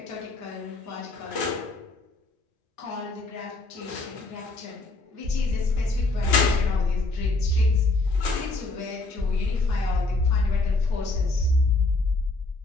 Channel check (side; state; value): right; quieter; 3.2 dB